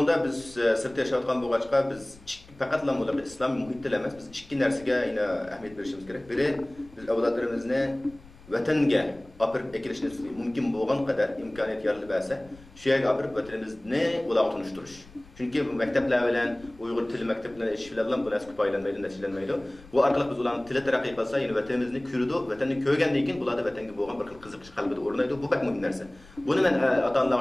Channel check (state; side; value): noise; left; rumble, 23 dB below the sound